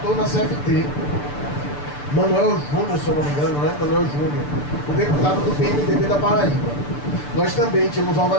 na CFT, Manuel Júnior, se eu não me engano, né? Manuel Júnior, o deputado do PMDB da Paraíba. Nós também tínhamos uma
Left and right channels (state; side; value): late; right; 6.8 ms